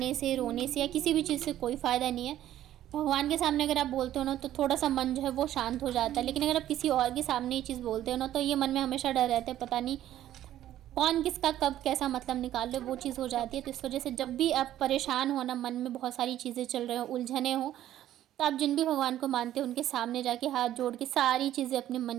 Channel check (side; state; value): left; quieter; 12.6 dB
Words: से, रोने से या किसी भी चीज़ से कोई फ़ायदा नहीं है। भगवान के सामने अगर आप बोलते हो ना, तो थोड़ा सा मन जो है वो शांत हो जाता है। लेकिन अगर आप किसी और के सामने ये चीज़ बोलते हो ना, तो ये मन में हमेशा डर रहता है, पता नहीं कौन किसका कब कैसा मतलब निकाल ले, वो चीज़ हो जाती है। तो इस वजह से जब भी आप परेशान हो ना, मन में बहुत सारी चीज़ें चल रही हो, उलझने हो, तो आप जिन भी भगवान को मानते हो उनके सामने जाके हाथ जोड़ के सारी चीज़ें अपने